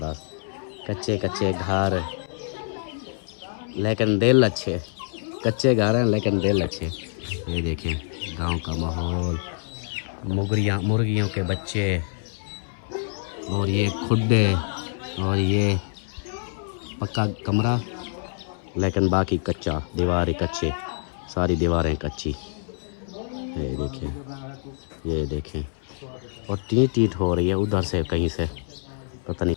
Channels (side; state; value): right; silent; 58 dB below the other